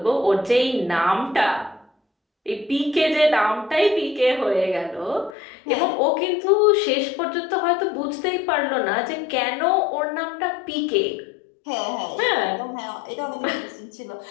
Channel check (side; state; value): right; drops out; at 5.4 s